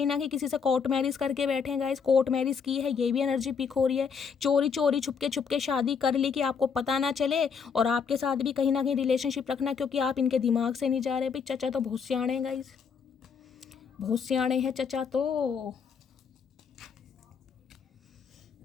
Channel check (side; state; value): right; quieter; 6.2 dB